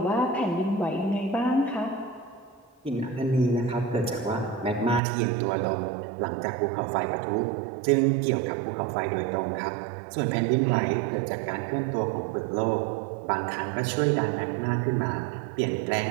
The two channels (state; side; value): drops out; left; at 5.0 s